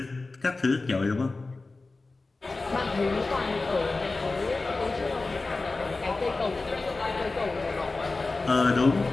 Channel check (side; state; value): right; quieter; 3.5 dB